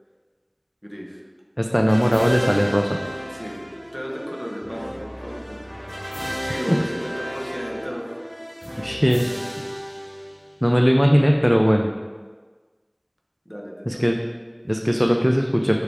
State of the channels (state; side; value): identical; both; correlation 1.00